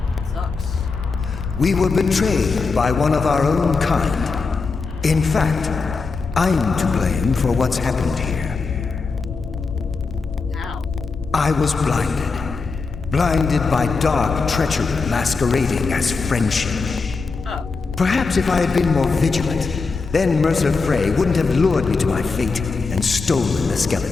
We were betrayed by one of our own kind. In fact, I'm to blame for what's happened here. I was blinded. blinded by dark treachery masquerading as friendship. Perhaps if I had been more vigilant, then Mercer Frey wouldn't have lured me to my fate and stolen the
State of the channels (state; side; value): quieter; right; 4.4 dB